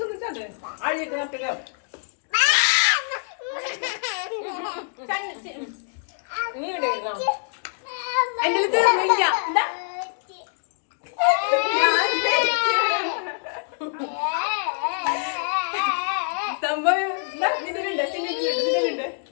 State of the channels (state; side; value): silent; right; digital silence